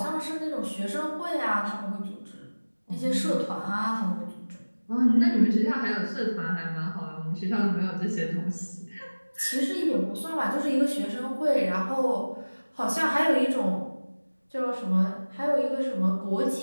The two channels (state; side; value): inverted; both; correlation -1.00